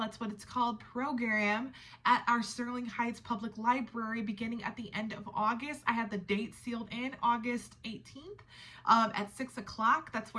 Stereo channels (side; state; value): both; identical; correlation 1.00